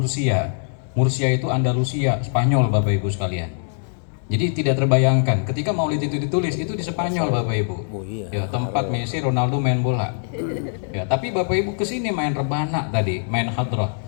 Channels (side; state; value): right; silent; digital silence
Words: Mursia itu Andalusia, Spanyol Bapak Ibu sekalian. Jadi tidak terbayangkan ketika Maulid itu ditulis itu di Spanyol Bapak Ibu. Oh iya. Ya, tempat Messi, Ronaldo main bola. Ya, tapi Bapak Ibu kesini main rebana tadi, main hadrah.